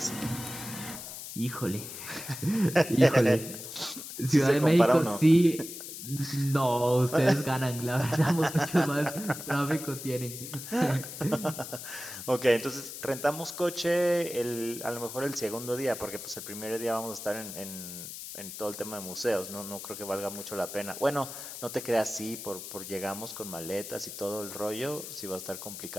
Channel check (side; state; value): left; noise; hiss, 10 dB below the sound